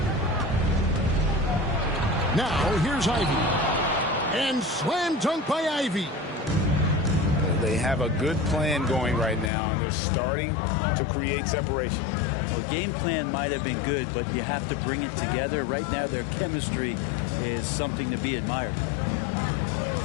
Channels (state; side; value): drops out; right; at 9.5 s